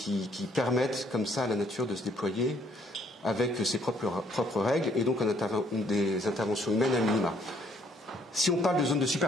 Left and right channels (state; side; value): normal; both; correlation 0.66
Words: permettent comme ça à la nature de se déployer avec ses propres règles, et donc des interventions humaines à minima. Si on parle de zone de